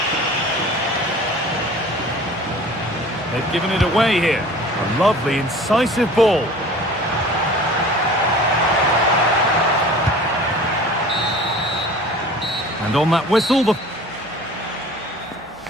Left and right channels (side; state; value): both; normal; correlation 0.43